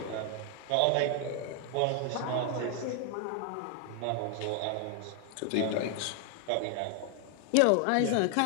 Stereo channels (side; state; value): both; different; correlation 0.00